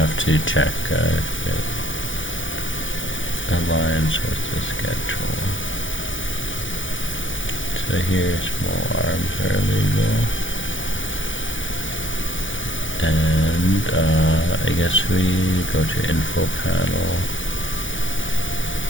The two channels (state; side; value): late; right; 0.56 ms